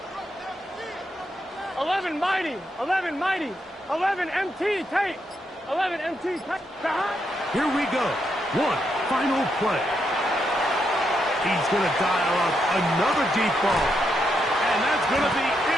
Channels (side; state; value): both; normal; correlation 0.80